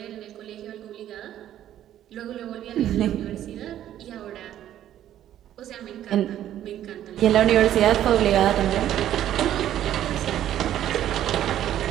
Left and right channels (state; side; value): quieter; left; 11.7 dB